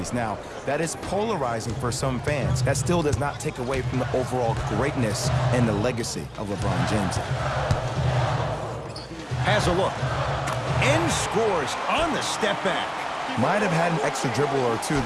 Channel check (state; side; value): identical; both; correlation 1.00